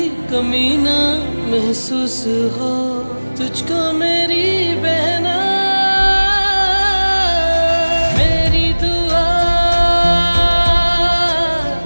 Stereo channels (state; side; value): inverted; both; correlation -1.00